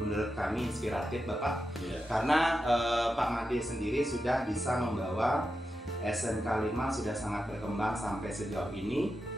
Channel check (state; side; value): normal; both; correlation 0.89